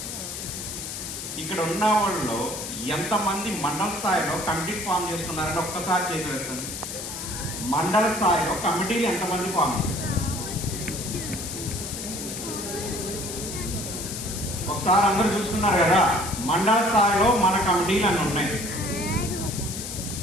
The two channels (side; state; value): left; noise; hiss, 7 dB below the sound